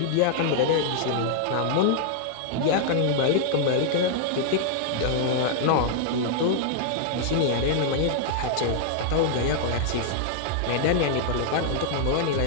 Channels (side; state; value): both; different; correlation -0.01